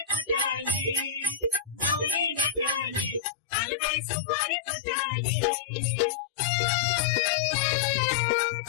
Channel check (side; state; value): right; drops out; at 3.2 s